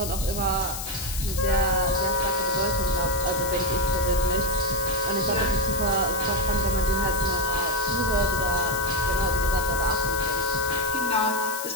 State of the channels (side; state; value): left; noise; hiss, 7 dB below the sound